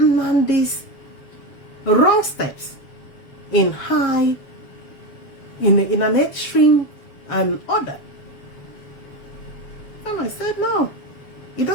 wrong steps in an extreme order. And I said, no, it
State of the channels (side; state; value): right; late; 7.3 ms